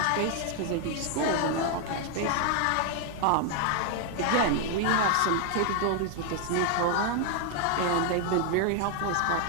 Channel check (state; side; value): different; both; correlation 0.00